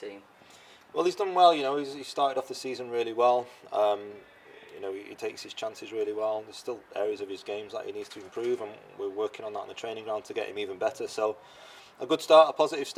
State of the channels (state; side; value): identical; both; correlation 1.00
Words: team? Well, he's done well. He started off the season really well. He takes his chances really well. There's still areas of his games that he needs to improve, and we're working on that on the training ground to get him even better. So, a good start, a positive